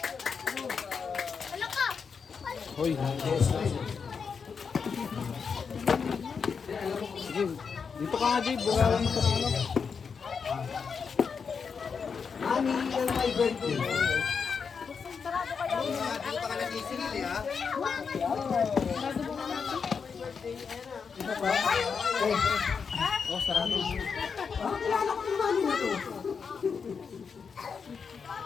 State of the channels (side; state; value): right; quieter; 5.9 dB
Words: Hoy, sige, dito ka nga, Dave. Bukalan mo sa ano. Mami, yung my birthday. Hindi pa ka nag-isigil eh, ha? Oh, sarado. Bakit kilala ko yung mami na to?